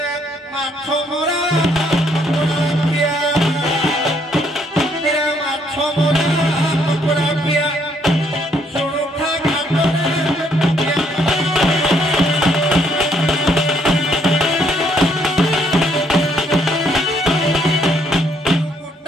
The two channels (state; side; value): normal; both; correlation 0.69